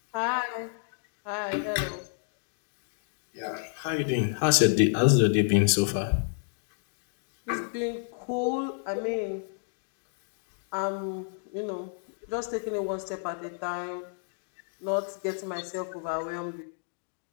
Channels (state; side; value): silent; right; digital silence